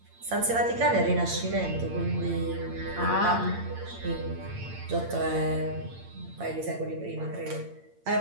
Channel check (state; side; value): late; left; 8.8 ms